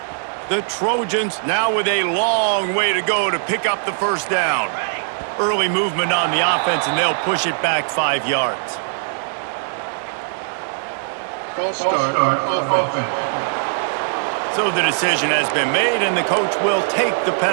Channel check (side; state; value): left; silent; 66 dB below the other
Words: The Trojans now with a long way to go to pick up the first down. Early movement on the offense, and they'll push it back 5 yards. False start offense. So the decision has been made, and the coach will take the